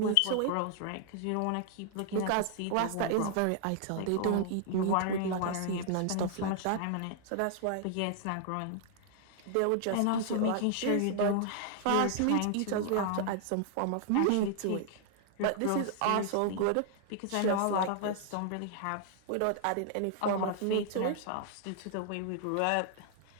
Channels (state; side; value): different; both; correlation 0.00